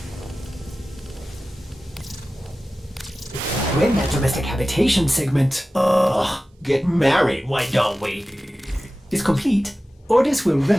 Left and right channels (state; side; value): normal; both; correlation 0.95